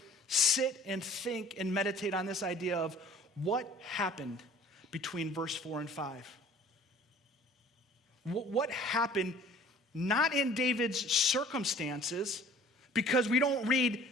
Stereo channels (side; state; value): both; normal; correlation 0.49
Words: sit and think and meditate on this idea of what happened between verse 4 and 5. What happened not in David's circumstances, because we don't read